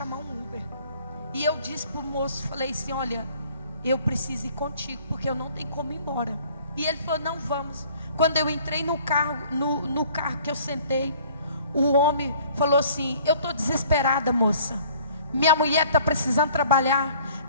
um Uber. E eu disse para o moço, falei assim: olha, eu preciso ir contigo, porque eu não tenho como ir embora. E ele falou: não, vamos. Quando eu entrei no carro, no carro que eu sentei, o homem falou assim: eu estou desesperada, moça, minha mulher está precisando trabalhar,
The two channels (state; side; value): inverted; both; correlation -0.55